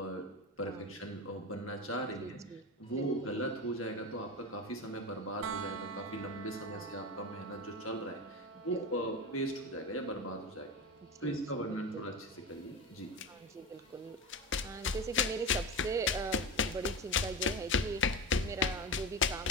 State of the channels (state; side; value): normal; both; correlation 0.23